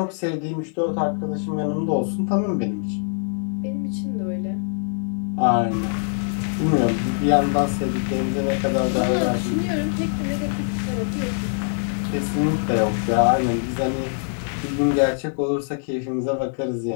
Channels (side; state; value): right; silent; digital silence